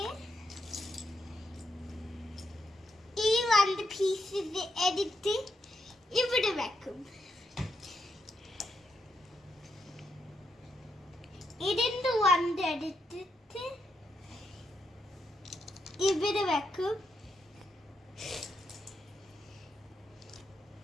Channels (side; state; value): both; normal; correlation 0.81